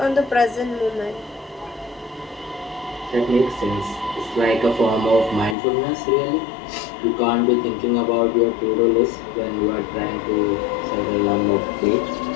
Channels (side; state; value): right; drops out; at 5.6 s